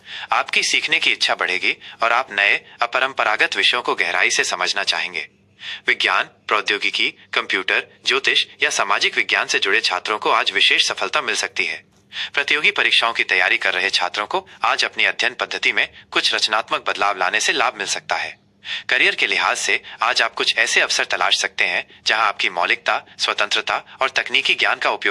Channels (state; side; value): identical; both; correlation 1.00